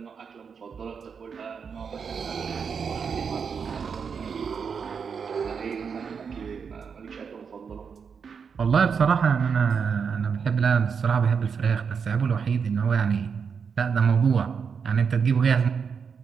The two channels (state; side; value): quieter; left; 6.2 dB